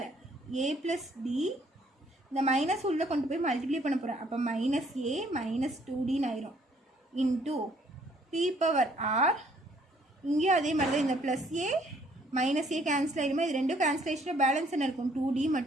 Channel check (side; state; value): both; normal; correlation 0.63